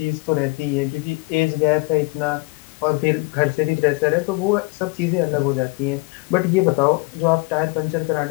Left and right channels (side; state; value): right; quieter; 26.6 dB